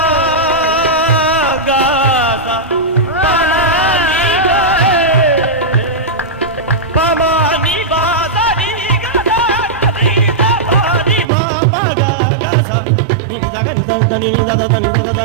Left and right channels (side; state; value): left; drops out; at 11.2 s